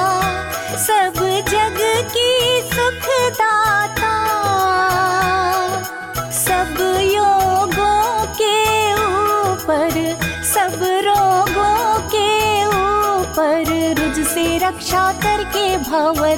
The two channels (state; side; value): identical; both; correlation 1.00